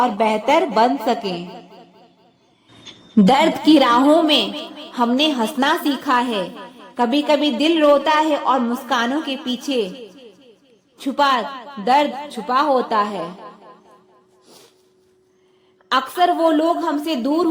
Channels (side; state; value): both; identical; correlation 1.00